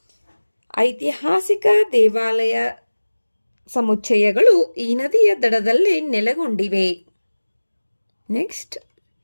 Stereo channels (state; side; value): inverted; both; correlation -1.00